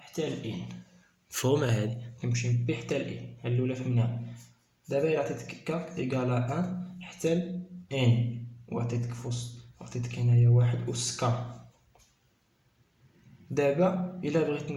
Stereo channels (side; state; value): both; identical; correlation 1.00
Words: ل n. مفهومة هادي؟ كيمشي من b حتى ل n. هاد الأولى فهمناها. دابا إلا عطيتك k égale à 1 حتى ل n، وعطيتك في وسط، عطيتك هنايا واحد أس k. دابا الا بغيت